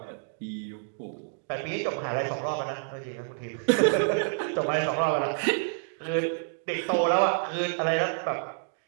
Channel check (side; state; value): left; silent; digital silence